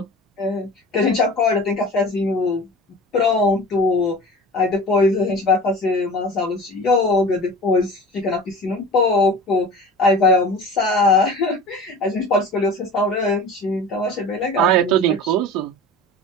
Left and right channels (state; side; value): normal; both; correlation 0.37